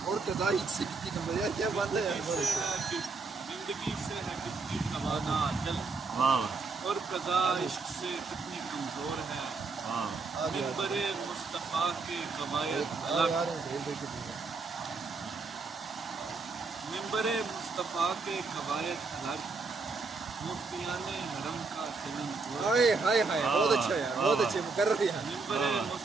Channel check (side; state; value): left; quieter; 4.2 dB